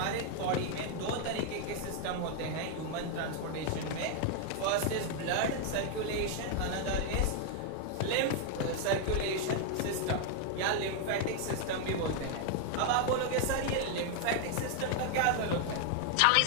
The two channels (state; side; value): different; both; correlation 0.00